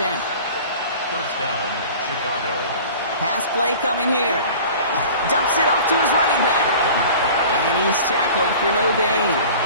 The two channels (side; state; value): both; inverted; correlation -0.42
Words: 1st down, Chicago. Pass play coming here. Dumps it off to his running back. And he's tackled for no gain.